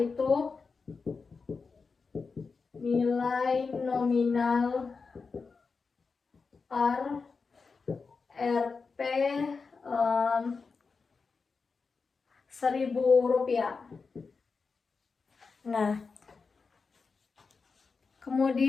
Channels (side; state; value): right; quieter; 4.7 dB